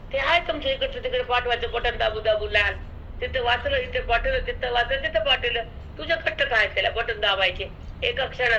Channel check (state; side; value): identical; both; correlation 1.00